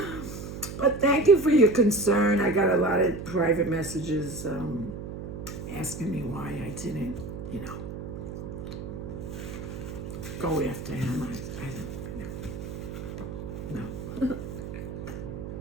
But thank you for your concern. I got a lot of private messages asking me why I didn't, go after him. No.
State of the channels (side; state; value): right; noise; hum, 8 dB below the sound